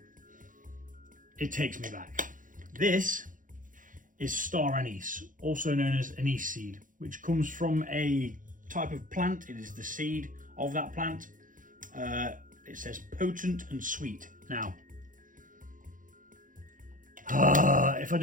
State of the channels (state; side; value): late; left; 0.39 ms